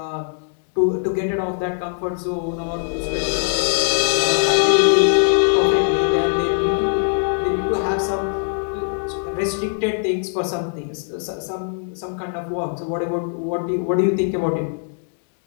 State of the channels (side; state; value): right; silent; 65 dB below the other